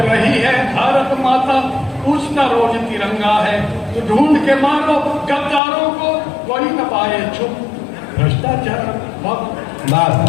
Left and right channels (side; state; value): right; drops out; at 5.6 s